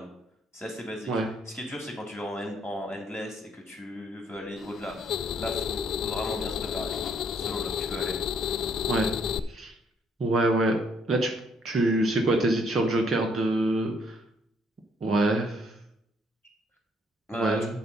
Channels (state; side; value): normal; both; correlation 0.68